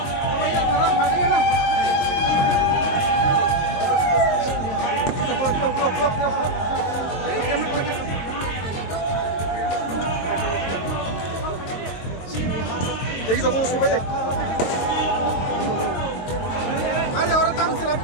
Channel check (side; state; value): right; late; 22 ms